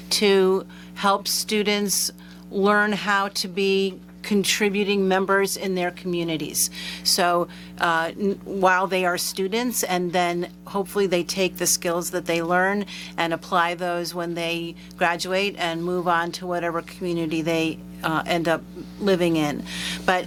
to help students learn how to be contributing members in their communities. So while they are students, and then hopefully they take the skills that they learn and apply those when they graduate and move on to whatever community they end up living in. But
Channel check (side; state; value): both; identical; correlation 1.00